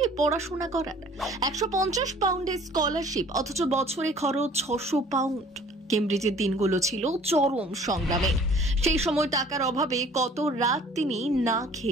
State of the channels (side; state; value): both; normal; correlation 0.52